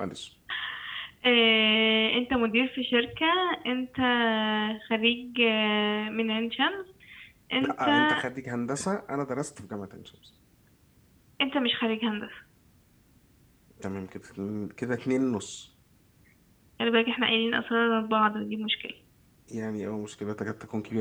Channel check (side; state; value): both; identical; correlation 1.00